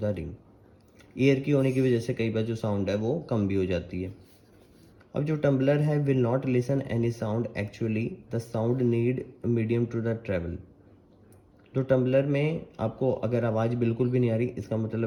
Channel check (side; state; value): both; identical; correlation 1.00